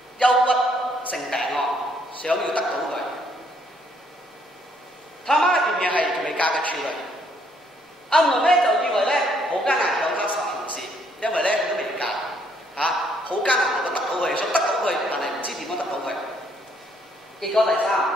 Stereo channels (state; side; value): normal; both; correlation 0.68